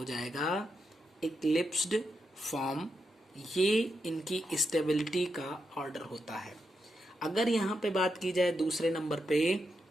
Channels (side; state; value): both; normal; correlation 0.85